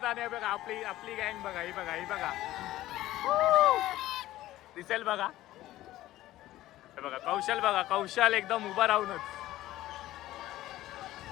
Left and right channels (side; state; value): right; quieter; 15.3 dB